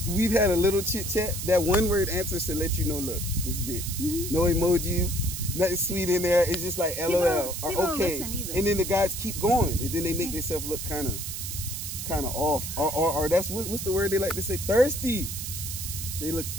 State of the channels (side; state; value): right; noise; hiss, 6 dB below the sound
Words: had a little chit chat, that one word answer should let you know, look, this is it. Mm-hmm. No emojis, nothing sweet in there. It's just like LOL or okay. And then the guys keep going, and then they make themselves look kind of off, or that's what's the word they like to say, thirsty. They look